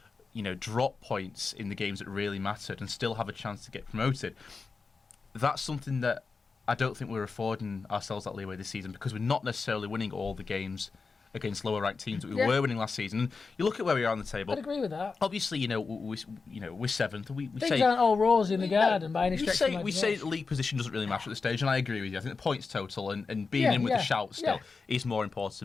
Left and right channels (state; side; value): quieter; right; 4.6 dB